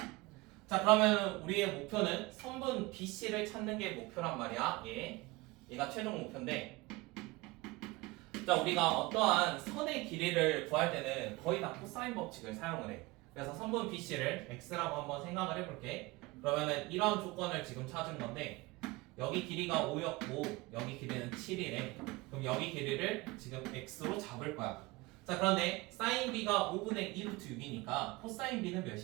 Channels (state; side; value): quieter; left; 22.0 dB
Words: 자, 그러면 우리의 목표는 선분 BC를 찾는 게 목표란 말이야. 얘가 최종 목표인데 자 우리가 어떠한 선의 길이를 구할 때는 거의 다 코사인 법칙을 사용을 해. 그래서 선분 BC를 X라고 한번 생각을 해볼게. 그러면은 이런 조건을 지금 찾은 건데 여기 길이가 5였고 여기 길이는 7이래. 그럼 여기 길이를 지금 X로 잡을 거야. 자 그런데 사인 B가 5분의 2루트 6이니까 코사인 B는